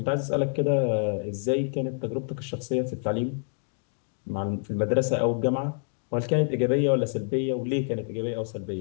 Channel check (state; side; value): silent; right; 60 dB below the other